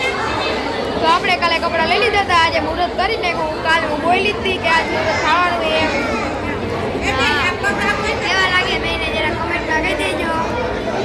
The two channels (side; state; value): both; identical; correlation 1.00